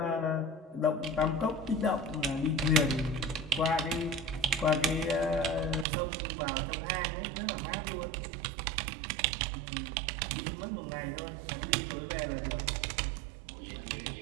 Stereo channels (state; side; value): drops out; left; at 5.9 s